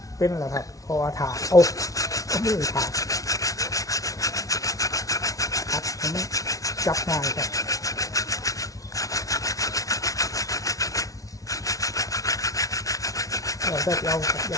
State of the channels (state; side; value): late; right; 0.17 ms